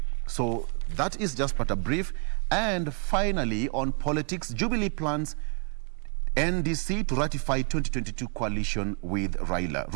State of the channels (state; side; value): quieter; left; 39.4 dB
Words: So that is just but a brief. And finally, on politics, Jubilee plans NDC to ratify 2022 coalition with Raila.